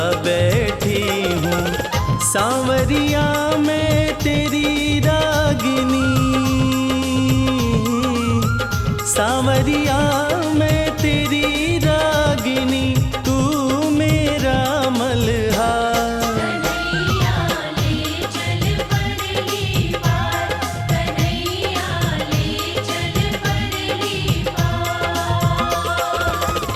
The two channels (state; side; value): identical; both; correlation 1.00